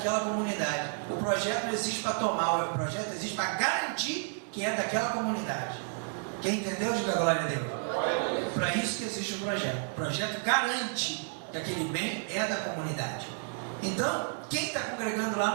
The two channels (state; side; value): silent; left; 57 dB below the other